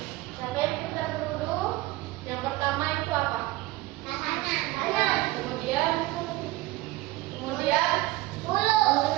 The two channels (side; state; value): left; quieter; 18.6 dB